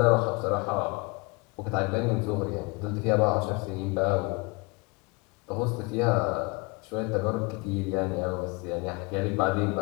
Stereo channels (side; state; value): right; quieter; 27.5 dB